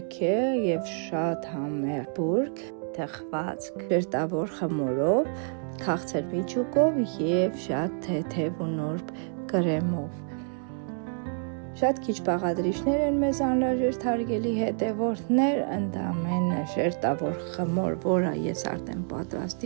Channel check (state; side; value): silent; left; 59 dB below the other